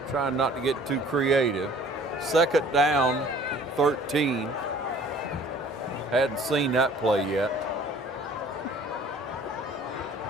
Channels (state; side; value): normal; both; correlation 0.52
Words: Trying not to get too creative. 2nd down, 13. Hadn't seen that play yet.